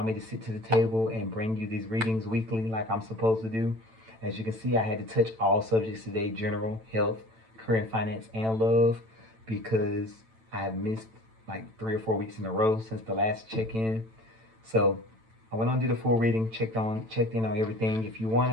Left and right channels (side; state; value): left; late; 9.0 ms